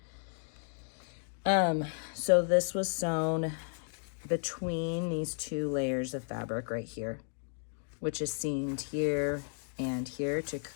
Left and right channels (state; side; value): silent; right; 55 dB below the other